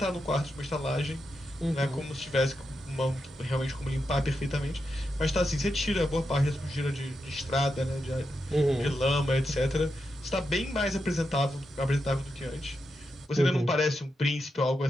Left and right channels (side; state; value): both; normal; correlation 0.86